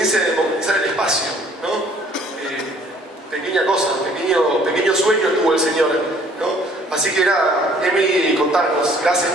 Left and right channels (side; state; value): both; normal; correlation 0.57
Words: de democratizar el espacio, ¿no? Pequeña cosa, pequeño sueño tuvo el señor, ¿no? Así que era, Emi, contarnos. Gracias